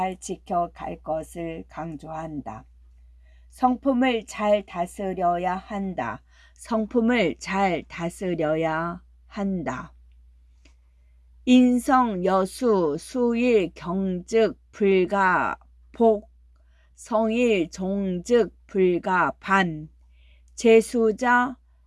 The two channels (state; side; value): identical; both; correlation 1.00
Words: 지켜갈 것을 강조한다. 성품을 잘 다스려야 한다. 성품을 잘 다스려야 한다. 인성 여수 수일 경즉 불가 복 성일 종즉 불가 반 재수자